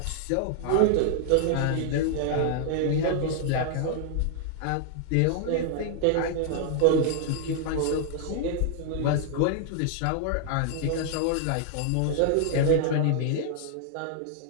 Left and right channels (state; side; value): different; both; correlation 0.00